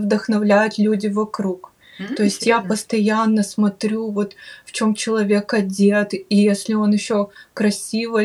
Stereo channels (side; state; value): both; identical; correlation 1.00